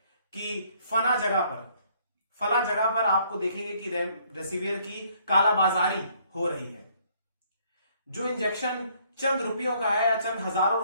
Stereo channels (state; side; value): inverted; both; correlation -0.64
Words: कि फला जगह पर आपको देखेंगे कि रेमडेसिविर की कालाबाजारी हो रही है। जो इंजेक्शन चंद रुपयों का है या चंद हजारों